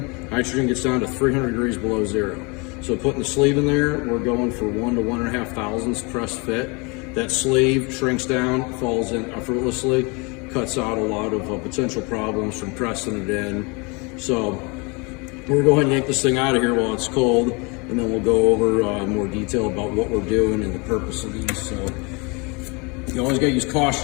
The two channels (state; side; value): quieter; right; 29.6 dB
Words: gets down to 300 degrees below zero. So putting the sleeve in there, we're going for 1 to 1.5 thousandths press fit. That sleeve shrinks down, falls in effortlessly, cuts out a lot of potential problems from pressing it in. So we're going to go ahead and yank this thing out of here while it's cold, and then we'll go over more detail about what we're doing and the purpose of these. So you always got to use